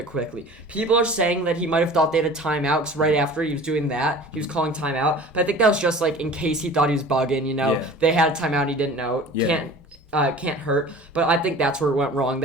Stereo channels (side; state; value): both; normal; correlation 0.42